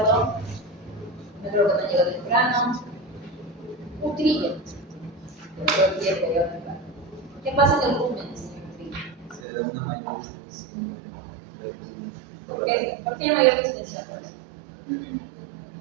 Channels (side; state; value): left; drops out; at 9.4 s